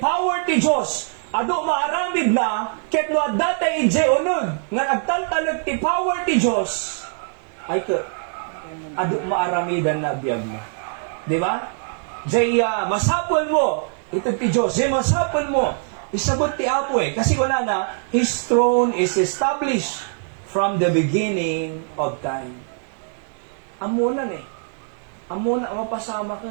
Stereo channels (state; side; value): silent; left; 64 dB below the other